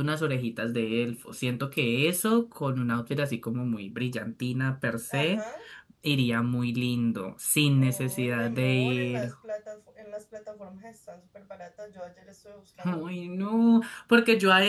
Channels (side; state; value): both; identical; correlation 1.00